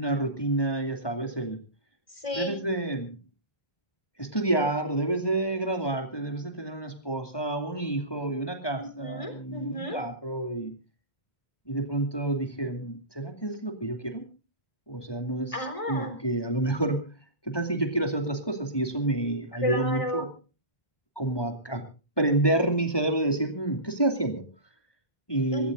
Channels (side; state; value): right; late; 1.2 ms